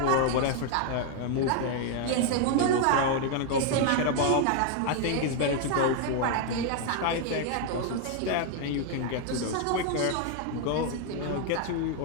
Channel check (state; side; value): different; both; correlation 0.00